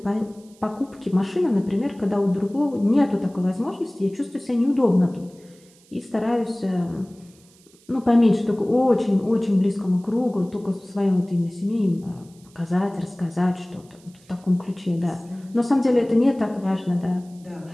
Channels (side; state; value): right; noise; hiss, 29 dB below the sound